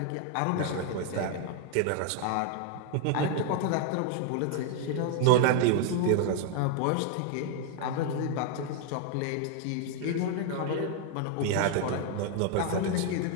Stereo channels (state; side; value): different; both; correlation 0.00